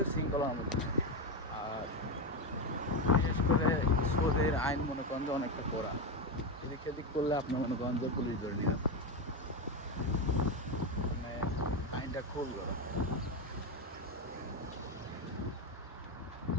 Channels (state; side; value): normal; both; correlation 0.12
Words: শৃঙ্খলার মধ্যে থাকে। আর বিশেষ করে সৌদির আইন মনে করেন যে অনেকটা কড়া। এদিক সেদিক করলে আপনি মনে করেন যে পুলিশ ধরে নিয়ে যাবে। মানে আইনটা খুব কড়া।